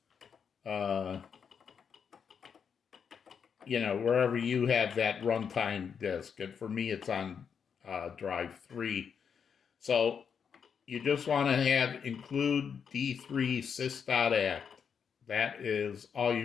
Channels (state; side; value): quieter; right; 6.9 dB